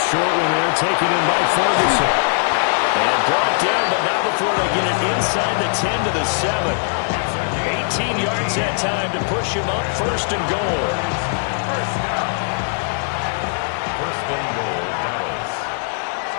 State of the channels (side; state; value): right; silent; digital silence